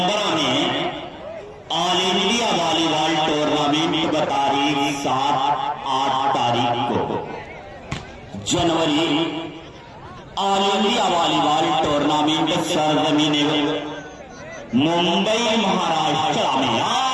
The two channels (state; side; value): identical; both; correlation 1.00